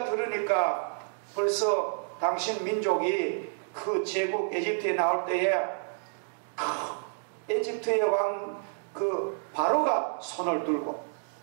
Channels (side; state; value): left; silent; digital silence